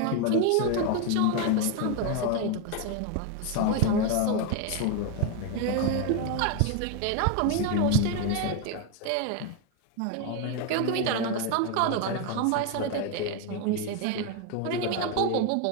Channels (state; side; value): different; both; correlation 0.01